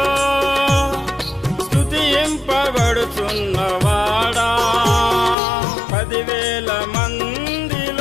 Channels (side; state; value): right; drops out; at 5.4 s